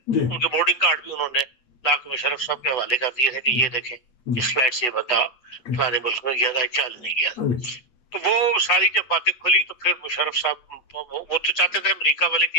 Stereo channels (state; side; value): late; right; 8.2 ms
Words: जी उनके बोर्डिंग कार्ड भी उन्होंने लाके मुशर्रफ साहब के हवाले कर दिए थे कि ये देखें इस फ्लाइट से ये बता फलाने मुल्क में गया था, क्या नहीं गया था। तो वो सारी जब बातें खुली तो फिर मुशर्रफ साहब वो तो चाहते थे अमेरिका वाले